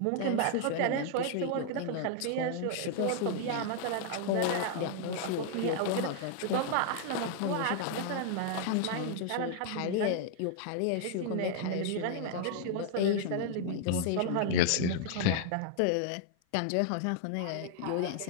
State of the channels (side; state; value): both; different; correlation 0.00